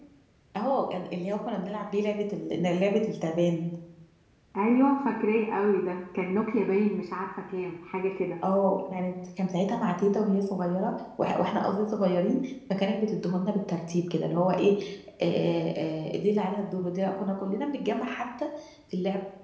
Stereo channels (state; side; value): identical; both; correlation 1.00